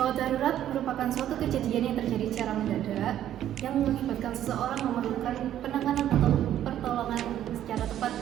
darurat merupakan suatu kejadian yang terjadi secara mendadak yang mengakibatkan seseorang memerlukan penanganan atau pertolongan secara tepat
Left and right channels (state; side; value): quieter; left; 11.5 dB